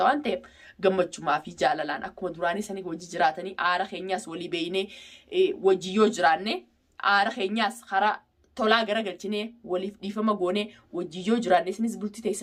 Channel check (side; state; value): both; identical; correlation 1.00